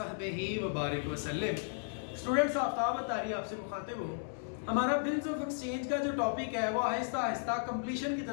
व बारिक वसल्लम। स्टूडेंट्स, आफ्ताब तारी आपसे मुखातिब हूँ। हमारा बिल्स ऑफ एक्सचेंज का जो टॉपिक है वो आहिस्ता आहिस्ता कंप्लीशन की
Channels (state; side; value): silent; right; 55 dB below the other